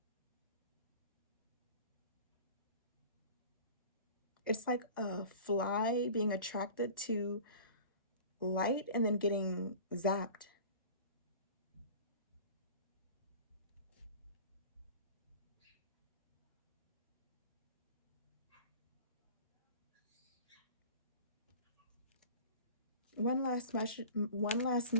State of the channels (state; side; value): inverted; both; correlation -0.41